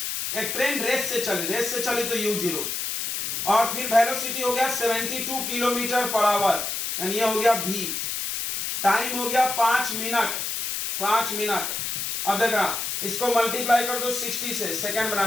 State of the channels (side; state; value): left; noise; hiss, 3 dB below the sound